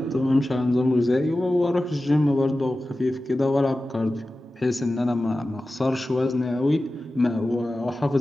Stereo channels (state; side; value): normal; both; correlation 0.95